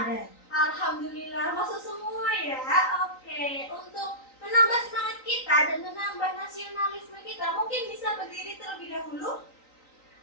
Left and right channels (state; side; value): late; right; 3.9 ms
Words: Alhamdulillah masuk semua ya. Oke, untuk menambah semangat kita dan menambah nasionalisme kita, mungkin bisa berdiri terlebih dahulu.